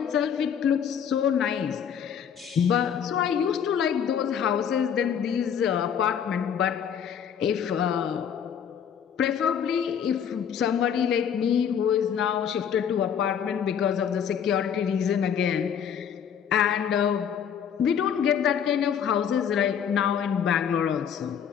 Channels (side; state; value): right; quieter; 8.1 dB